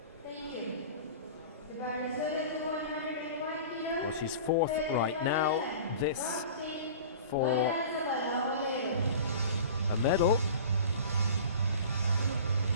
Well, she's 4th right now. This for a medal.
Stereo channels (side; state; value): both; inverted; correlation -0.39